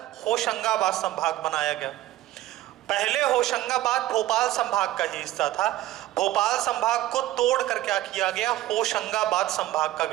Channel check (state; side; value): quieter; left; 15.1 dB